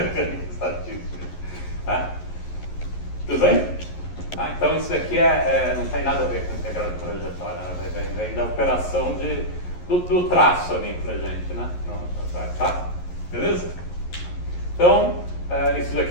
estatística. Tá? Tudo bem? Então isso aqui não tem nada a ver com integral de trajetória, né? Vem da operação do traço ali pra gente, né? Tá? Beleza? Então, isso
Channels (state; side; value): late; right; 11 ms